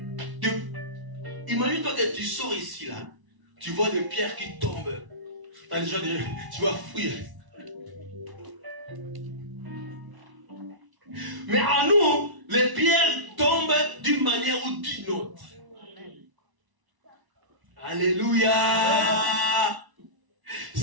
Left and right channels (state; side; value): late; left; 1.0 ms